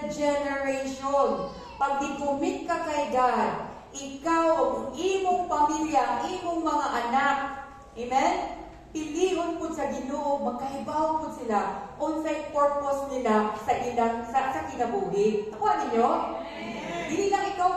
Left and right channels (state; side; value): identical; both; correlation 1.00